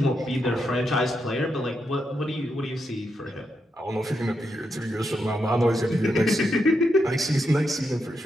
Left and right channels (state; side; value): normal; both; correlation 0.83